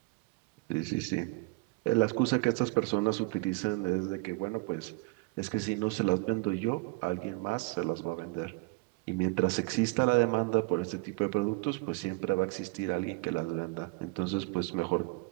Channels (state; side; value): quieter; left; 26.5 dB